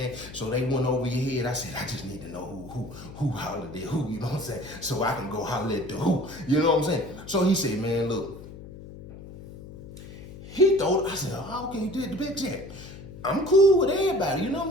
So they went over your head. I said, I just need to know who hollered at who, you know what I'm saying? So I can go holler at the who, you know what I'm saying? So he said, man, look, he thought, I said, oh, okay, you did the big check. I'm cool with everybody, you know what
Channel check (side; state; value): left; noise; hum, 15 dB below the sound